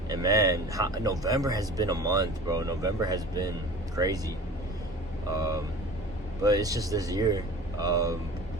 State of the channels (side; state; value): both; normal; correlation 0.40